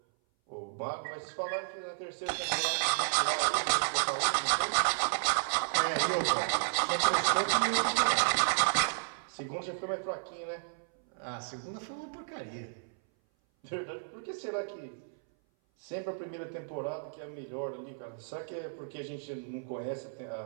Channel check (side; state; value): left; silent; 56 dB below the other